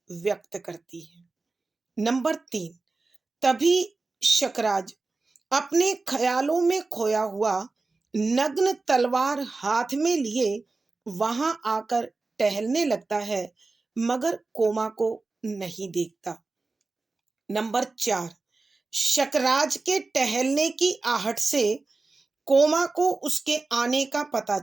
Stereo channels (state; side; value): quieter; left; 3.6 dB